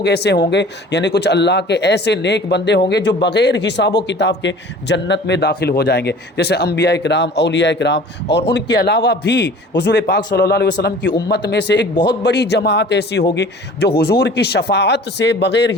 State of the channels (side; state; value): both; normal; correlation 0.45